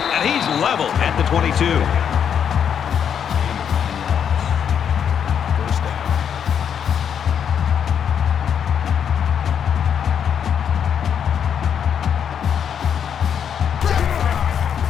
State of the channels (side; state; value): right; quieter; 8.1 dB